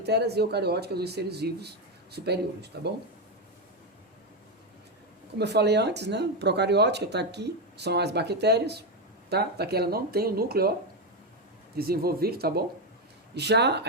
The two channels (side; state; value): both; normal; correlation 0.08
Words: e eucariótica, os seres vivos superiores, tá bom? Como eu falei antes, né? Procariótica está aqui, são as bactérias, tá? Daqui ela não tem o núcleo, ó, desenvolvido, tá bom? Já